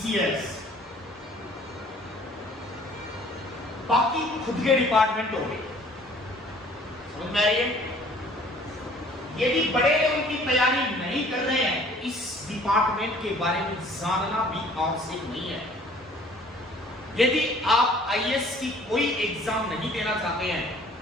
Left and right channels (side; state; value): both; normal; correlation 0.54